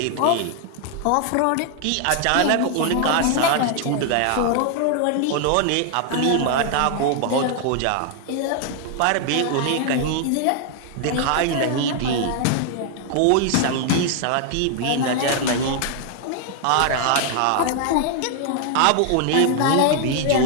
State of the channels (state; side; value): different; both; correlation 0.00